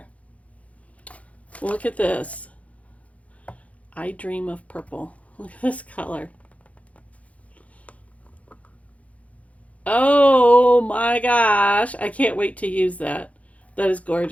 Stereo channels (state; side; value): late; right; 0.066 ms